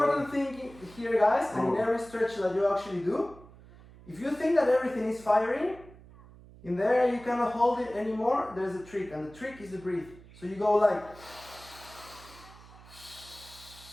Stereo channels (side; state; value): right; noise; hum, 21 dB below the sound